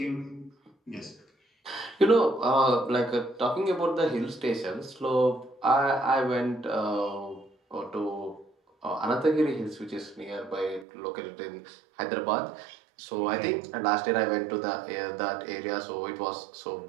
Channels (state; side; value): drops out; left; at 10.9 s